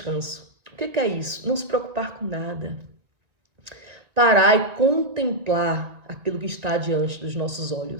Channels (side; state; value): left; late; 1.9 ms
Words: O que é isso? Não se preocupar com nada. Parar e contemplar aquilo que está diante dos nossos